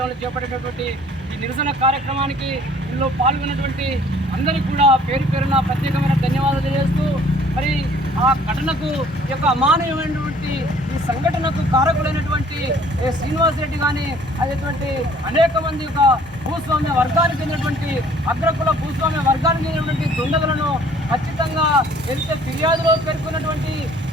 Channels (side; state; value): both; normal; correlation 0.56